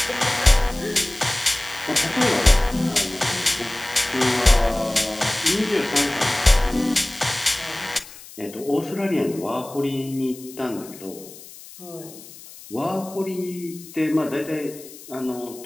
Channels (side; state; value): left; noise; hiss, 18 dB below the sound